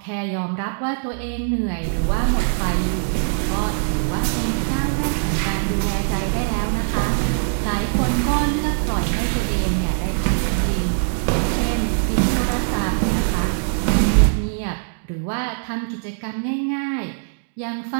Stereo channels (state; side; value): silent; left; digital silence